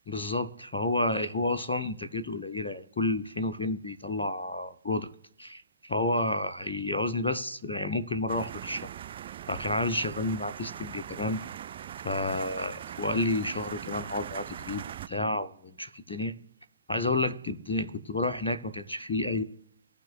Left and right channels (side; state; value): both; inverted; correlation -0.45